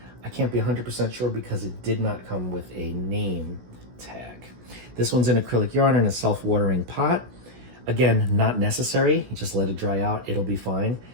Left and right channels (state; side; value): late; left; 16 ms